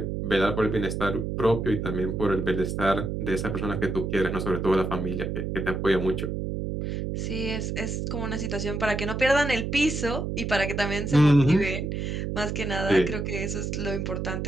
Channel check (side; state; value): right; noise; hum, 3 dB below the sound